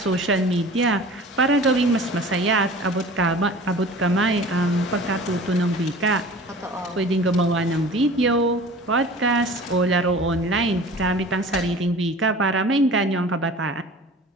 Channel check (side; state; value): both; normal; correlation 0.42